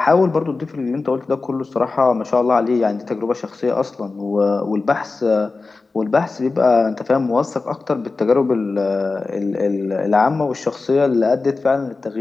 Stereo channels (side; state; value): right; quieter; 3.8 dB